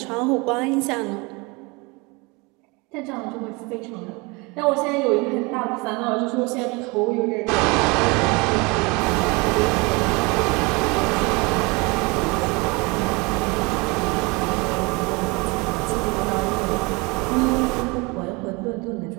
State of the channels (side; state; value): left; quieter; 27.0 dB